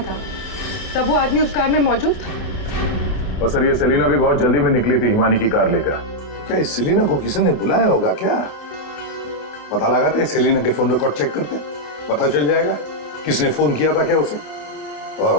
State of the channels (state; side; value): late; right; 28 ms